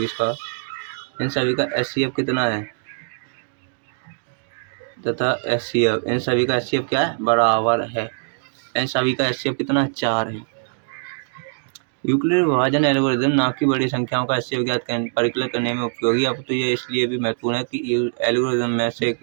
का, इन सभी का HCF कितना है? तथा HCF, इन सभी का HCF क्या है? बराबर है। इन सभी का HCF कितना है? 4 है। यूक्लिड विभाजन एल्गोरिदम ना की बड़ी संख्याओं का HCF ज्ञात परिकलन करने में उपयोगी। अब तो ये इसलिए भी महत्वपूर्ण है कि एल्गोरिदम में से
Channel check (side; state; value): left; silent; digital silence